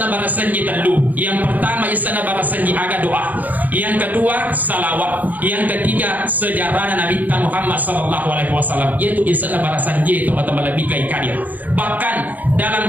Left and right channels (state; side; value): late; left; 0.082 ms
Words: barasanji telu. Yang pertama isana barasanji aga doa, yang kedua salawat, yang ketiga sejarah Nabi Muhammad sallallahu alaihi wasallam, yaitu isana barasanji teman-teman lebih kai kadir. Bahkan